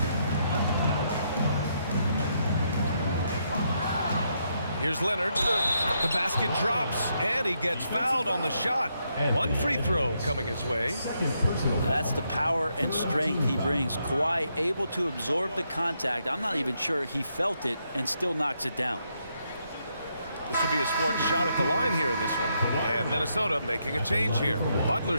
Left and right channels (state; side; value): inverted; both; correlation -0.78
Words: Here's Leonard. The basket drops, and he gets fouled on the shot. One free throw coming his way. That's the power and strength he brings. Kawhi able to absorb the contact. I'm not even sure he felt it and still knocks it down. This will be his 4th shot at the line here in this one. And Minnesota making a change here.